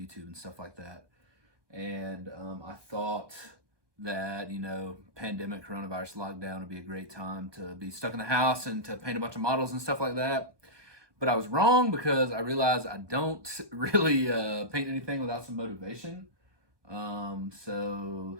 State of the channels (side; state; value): left; late; 1.2 ms